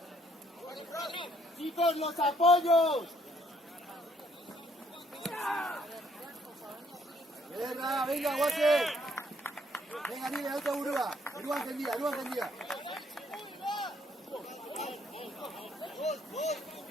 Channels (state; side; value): normal; both; correlation 0.66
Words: ¡Chicos, los apoyos! Venga, Guase. Venga, niña, otra burua. Burua encendida.